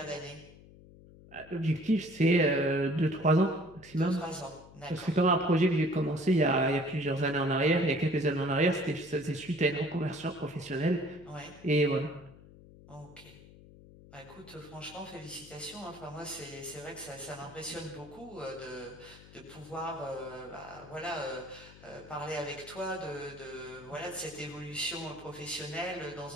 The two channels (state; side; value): noise; left; hum, 20 dB below the sound